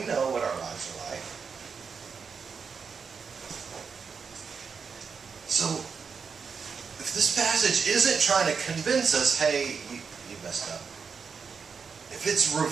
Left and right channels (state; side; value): quieter; left; 5.8 dB